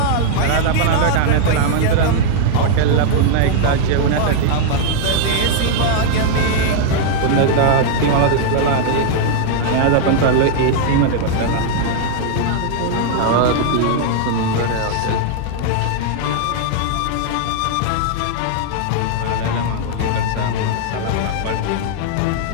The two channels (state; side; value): different; both; correlation -0.01